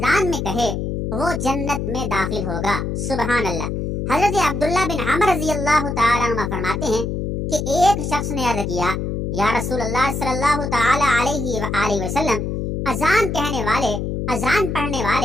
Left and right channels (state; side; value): noise; left; hum, 3 dB below the sound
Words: میں کہے وہ جنت میں داخل ہوگا۔ سبحان اللہ۔ حضرت عبداللہ بن عمر رضی اللہ تعالیٰ عنہ فرماتے ہیں کہ ایک شخص نے عرض کیا، یا رسول اللہ صلی اللہ تعالیٰ علیہ وآلہ وسلم، اذان کہنے والے، اذان پڑھنے